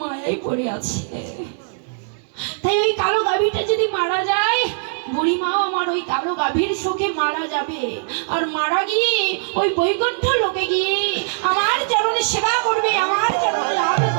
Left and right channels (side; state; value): left; silent; digital silence